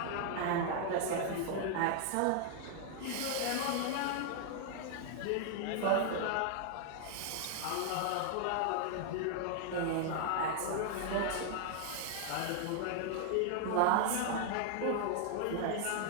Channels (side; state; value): both; different; correlation 0.00